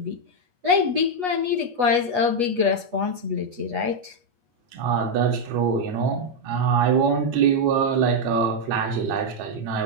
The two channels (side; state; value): left; late; 8.3 ms